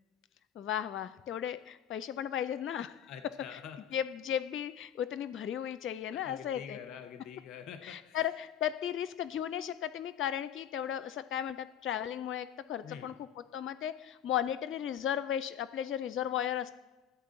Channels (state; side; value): quieter; right; 9.7 dB